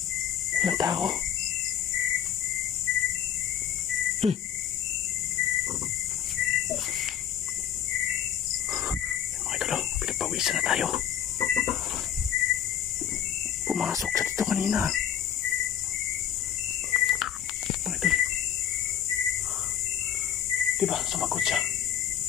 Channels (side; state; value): right; quieter; 9.6 dB